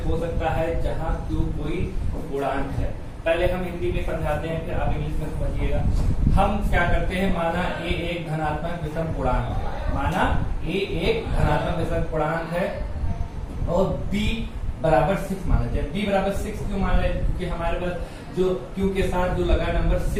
हो सकता है जहां q कोई पूर्णांक है। पहले हम हिंदी में समझाते हैं, फिर आप इंग्लिश में समझिएगा। हम क्या करते हैं, माना a एक धनात्मक विषम पूर्णांक है, माना a एक धनात्मक विषम पूर्णांक है और b बराबर 6 माना जाए। b बराबर 6 क्यों मान रहे हैं? क्योंकि हमारे पास जो q के साथ जो लगा नंबर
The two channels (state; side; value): identical; both; correlation 1.00